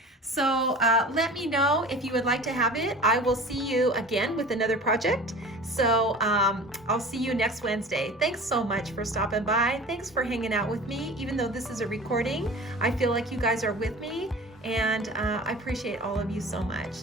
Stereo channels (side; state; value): both; normal; correlation 0.39